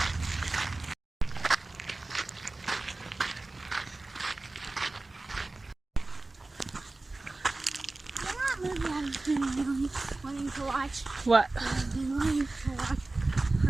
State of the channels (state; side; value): quieter; left; 3.1 dB